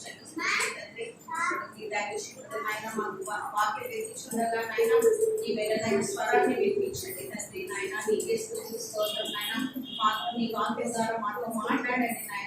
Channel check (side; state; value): both; identical; correlation 1.00